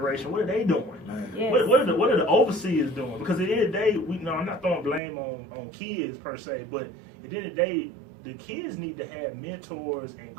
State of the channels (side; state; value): left; drops out; at 5.0 s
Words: what are they doing? Yes. What are the overseers doing? Because at the end of the day, I'm not throwing blame on kids per se, but at the end of the day, the kids need to have mentors and